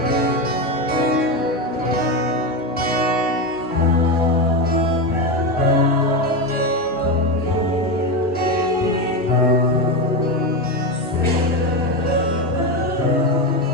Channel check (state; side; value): normal; both; correlation 0.14